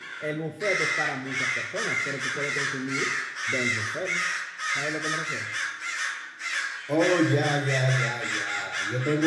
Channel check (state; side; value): identical; both; correlation 1.00